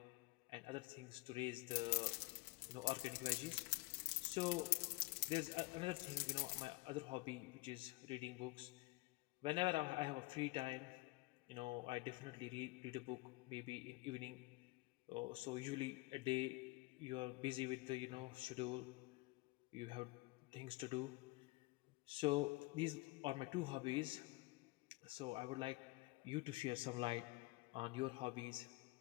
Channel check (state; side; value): quieter; right; 22.7 dB